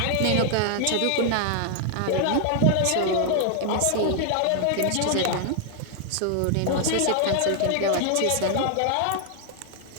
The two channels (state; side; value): different; both; correlation 0.00